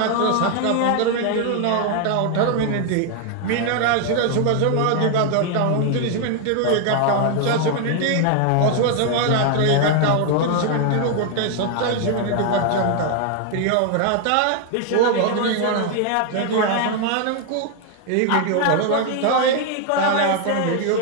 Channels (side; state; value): both; different; correlation 0.00